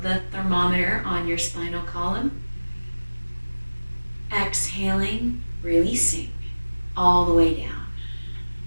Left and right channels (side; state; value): both; inverted; correlation -1.00